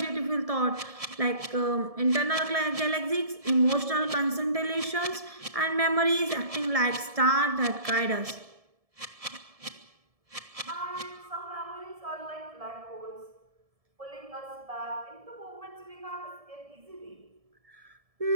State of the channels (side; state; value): left; late; 1.7 ms